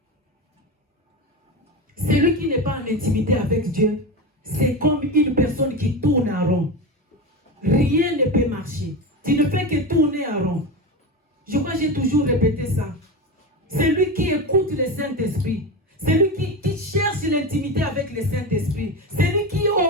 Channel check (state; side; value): normal; both; correlation 0.21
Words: Celui qui n'est pas en intimité avec Dieu, c'est comme une personne qui tourne en rond. Rien ne peut marcher. Tu ne fais que tourner en rond. Je crois que j'ai toujours répété ça. Celui qui écoute le Saint-Esprit, celui qui cherche l'intimité avec le Saint-Esprit, celui qui